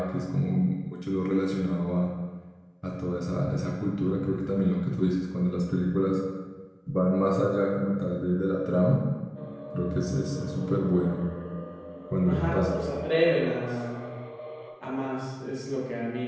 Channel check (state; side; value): identical; both; correlation 1.00